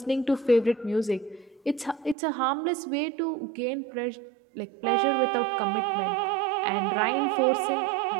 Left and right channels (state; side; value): drops out; left; at 2.1 s